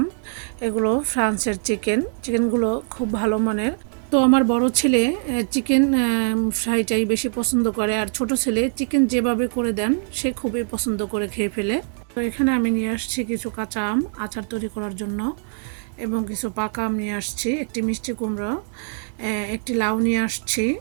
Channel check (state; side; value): silent; left; 56 dB below the other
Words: এগুলো ফ্রান্সের চিকেনগুলো খুব ভালো মানের। তো আমার বড় ছেলে চিকেন ফ্রাইটাই বেশি পছন্দ করে, আর ছোট ছেলে চিকেন যেভাবে করে দেন সে খুবই পছন্দ করে খেয়ে ফেলে। তো এখানে আমি নিয়ে আসছি কিছু কাঁচা আম আচার তৈরি করার জন্য, এবং কিছু পাকা আম নিয়ে আসছি, একটি মিষ্টি কুমড়ো, একটি লাউ নিয়ে আসছি।